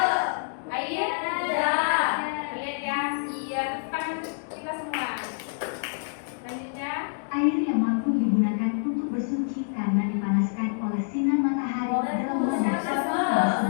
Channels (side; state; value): right; silent; digital silence